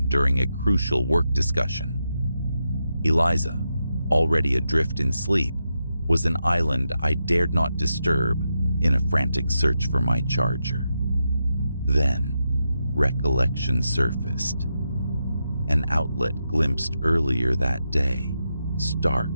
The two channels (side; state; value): both; inverted; correlation -0.86